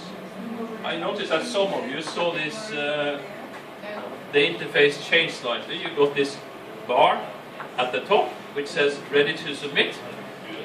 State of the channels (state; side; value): identical; both; correlation 1.00